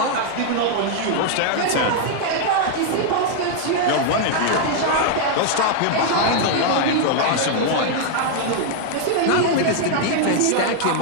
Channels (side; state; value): both; different; correlation 0.00